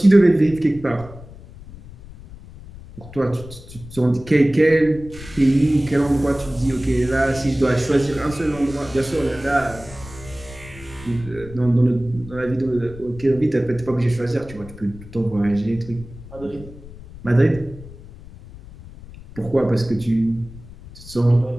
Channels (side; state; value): left; noise; rumble, 17 dB below the sound